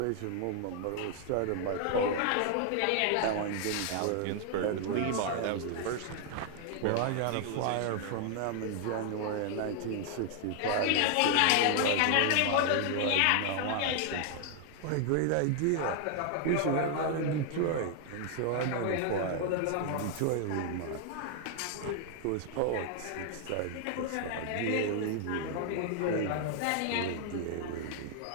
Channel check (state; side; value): different; both; correlation 0.00